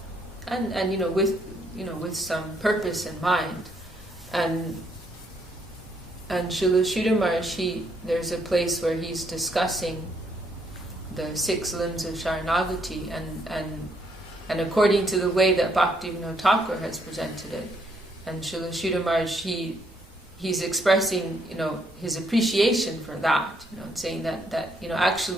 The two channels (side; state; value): both; normal; correlation 0.72